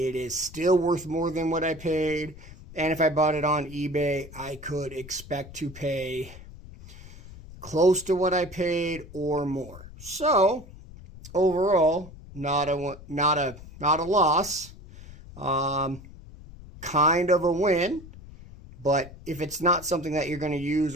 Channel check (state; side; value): noise; left; rumble, 17 dB below the sound